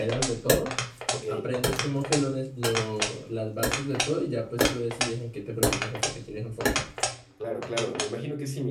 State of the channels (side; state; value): both; identical; correlation 1.00